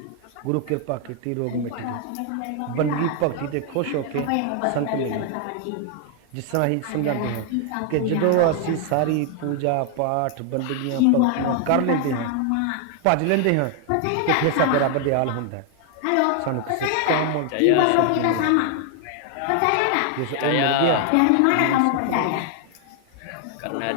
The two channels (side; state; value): both; different; correlation 0.00